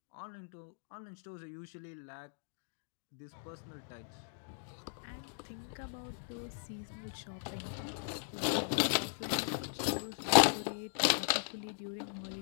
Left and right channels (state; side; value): silent; right; digital silence